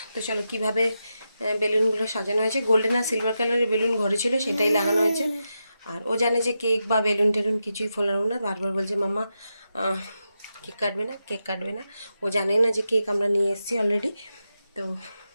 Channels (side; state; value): both; inverted; correlation -0.88